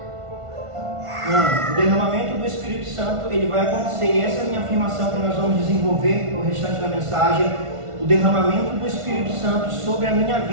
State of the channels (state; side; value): late; left; 1.5 ms